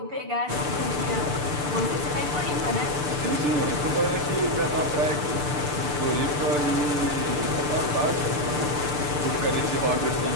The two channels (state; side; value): late; left; 6.8 ms